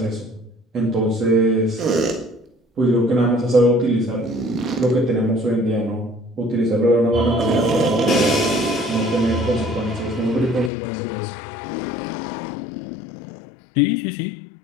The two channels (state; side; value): drops out; right; at 10.7 s